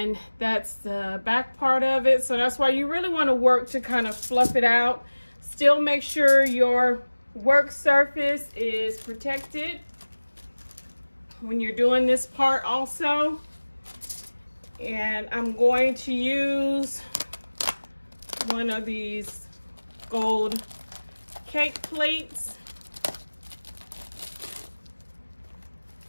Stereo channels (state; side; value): inverted; both; correlation -1.00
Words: that's the back part of it. So that's why you really want to work to kind of fluff it out. Still make sure your work surface is protected when you're doing this part also. And I'm going to use one of these gold cake plates.